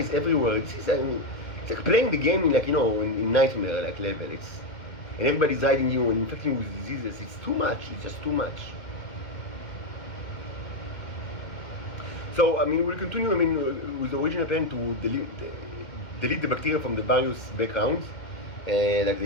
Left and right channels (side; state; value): right; late; 2.3 ms